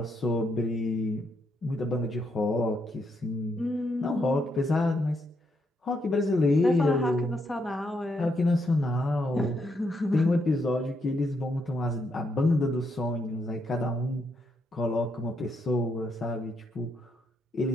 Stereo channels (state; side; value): normal; both; correlation 0.78